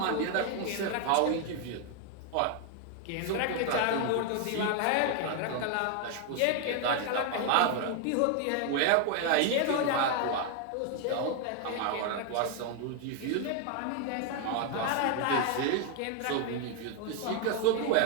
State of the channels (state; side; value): different; both; correlation 0.00